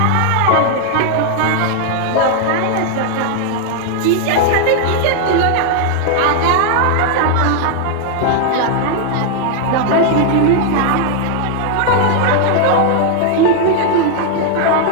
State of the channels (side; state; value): both; different; correlation 0.00